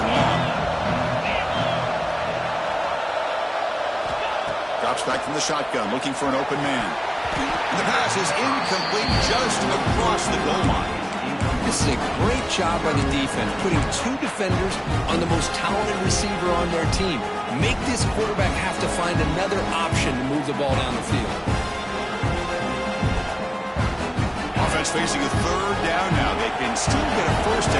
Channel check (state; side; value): identical; both; correlation 1.00